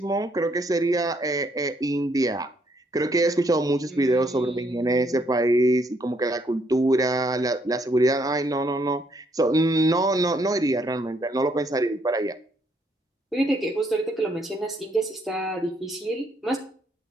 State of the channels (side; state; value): both; normal; correlation 0.71